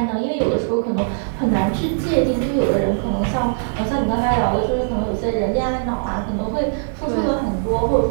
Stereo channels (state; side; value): silent; left; 58 dB below the other